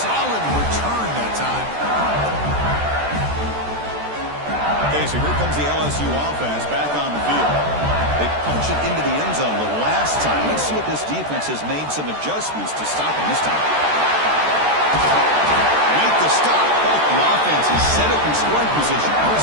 return that time. Okay, so here comes the LSU offense back on the field. They punch it into the end zone the last time. Let's see if this defense has made some adjustments to stop him this time. Make the stop. Both the offense is set up in scoring position.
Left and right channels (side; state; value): left; late; 13 ms